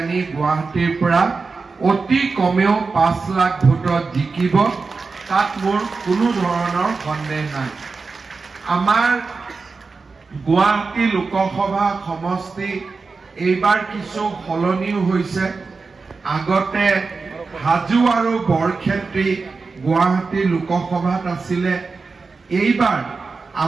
গুৱাহাটীৰ পৰা অতি কমেও 5 লাখ ভোটত জিকিব তাত মোৰ কোনো ধৰণৰ সন্দেহ নাই আমাৰ গুৱাহাটী লোকসভা সমষ্টি এইবাৰ কিছু সলনিও হৈছে আগতে হাজু আৰু বৰক্ষেত্ৰী গুৱাহাটী লোকসভাত আছিলে এইবাৰ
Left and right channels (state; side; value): quieter; left; 4.4 dB